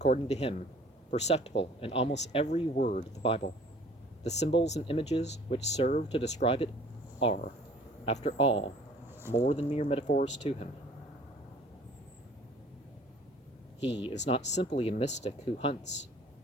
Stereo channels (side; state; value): both; normal; correlation 0.52